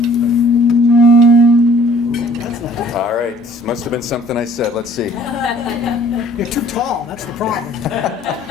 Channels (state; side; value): normal; both; correlation 0.55